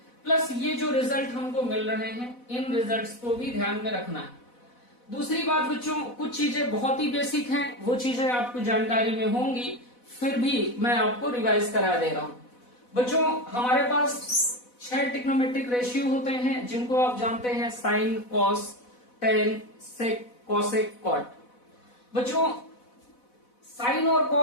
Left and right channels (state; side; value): late; right; 4.1 ms